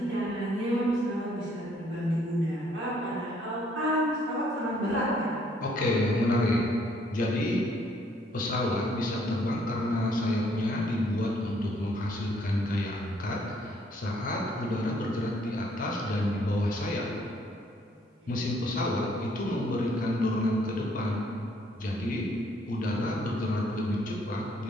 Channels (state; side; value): normal; both; correlation 0.66